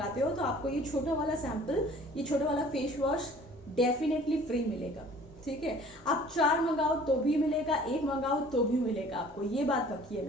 हो तो आपको ये छोटा वाला सैंपल, ये छोटा वाला फेस वॉश डेफिनेटली फ्री मिलेगा, ठीक है। आप 4 मंगाओ तो भी मिलेगा, 1 मंगाओ तो भी मिलेगा, आपको ये बात पक्की है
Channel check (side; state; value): both; normal; correlation 0.50